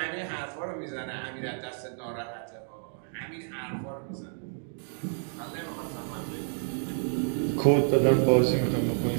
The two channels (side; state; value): left; silent; 58 dB below the other